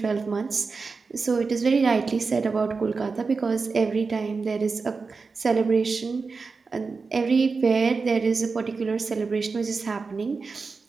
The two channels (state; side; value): quieter; left; 4.5 dB